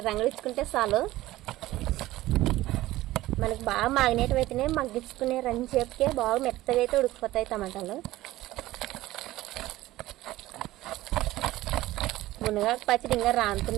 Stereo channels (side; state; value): left; quieter; 16.5 dB